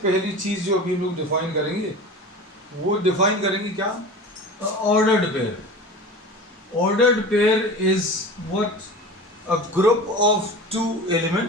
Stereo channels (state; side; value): normal; both; correlation 0.34